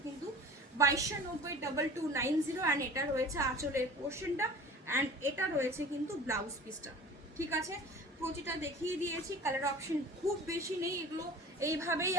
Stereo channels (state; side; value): normal; both; correlation 0.41